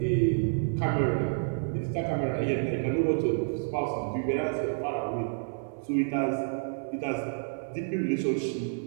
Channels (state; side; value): silent; left; 58 dB below the other